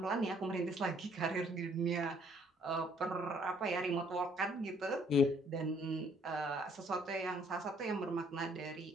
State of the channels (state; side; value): normal; both; correlation 0.63